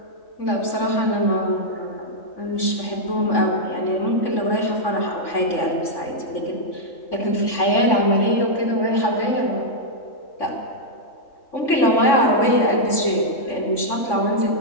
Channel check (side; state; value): right; late; 3.6 ms